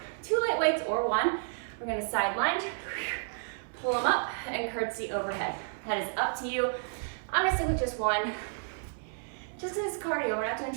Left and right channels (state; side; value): silent; left; 57 dB below the other